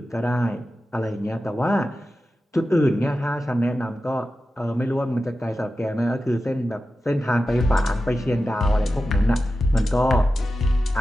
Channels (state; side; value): normal; both; correlation 0.92